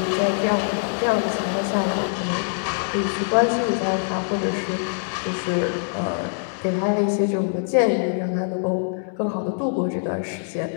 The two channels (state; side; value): silent; right; digital silence